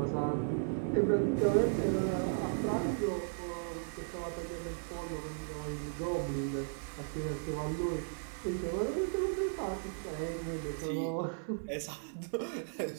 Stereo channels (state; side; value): silent; left; 54 dB below the other